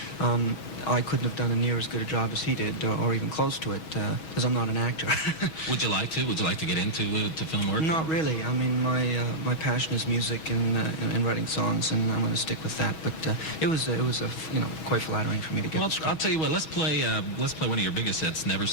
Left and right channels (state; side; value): late; right; 6.2 ms